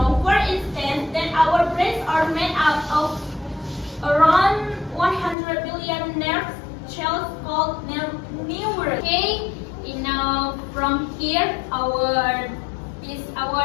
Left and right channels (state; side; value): drops out; right; at 5.4 s